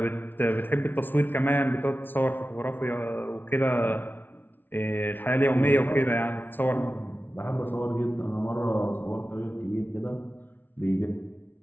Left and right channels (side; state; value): right; late; 0.093 ms